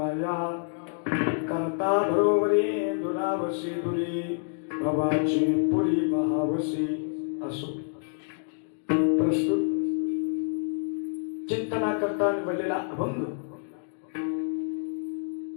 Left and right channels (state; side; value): silent; right; 58 dB below the other